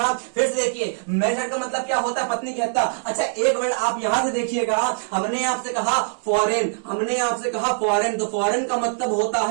फिर से देखिए मैरिसाइड का मतलब क्या होता है? पत्नी की हत्या। अच्छा एक वर्ड आप यहां से देखिएगा, हमने आपसे कहा फॉरेन, हमने आपसे कहा फॉरेन, तो फॉरेन का मतलब होता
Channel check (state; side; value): silent; left; 61 dB below the other